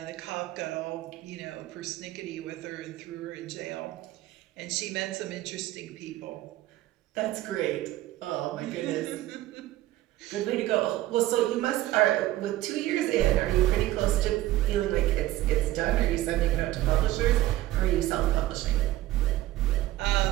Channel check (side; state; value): left; quieter; 15.6 dB